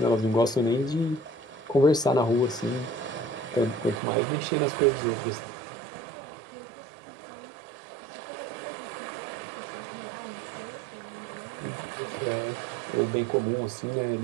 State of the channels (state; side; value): drops out; left; at 4.0 s